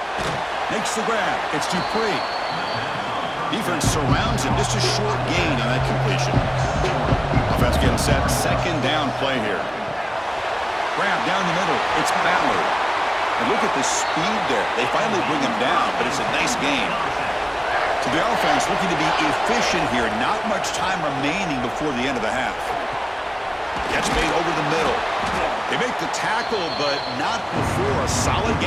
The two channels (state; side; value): identical; both; correlation 1.00